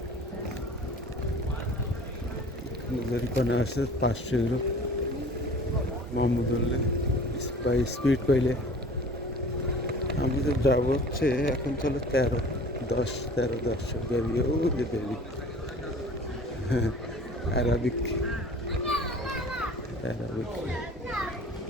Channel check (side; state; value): both; normal; correlation 0.46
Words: যেখানে আসে 500 ইউরো মোহাম্মদুল্লাহ বাই স্পিড পাইলে। আমি তো যাবো হচ্ছে এখন, চলো 13-10 বেরিয়ে, ও যে বেরি অ্যারাবিক